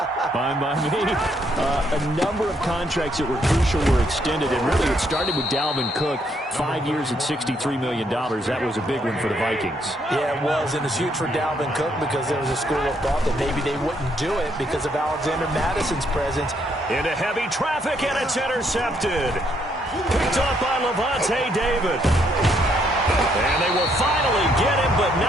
Fine by me. A number of contracts that were crucial were extended, and really it started with Dalvin Cook, 5 years at $63 million. That was a big one for the Vikings. Yeah, it was, and it's huge for Dalvin Cook because there was a school of thought that maybe they wouldn't do it because of Alexander Madison's presence. Into heavy traffic, and it's intercepted. Picked up by Levante David. And they will finally get him, but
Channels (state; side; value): normal; both; correlation 0.72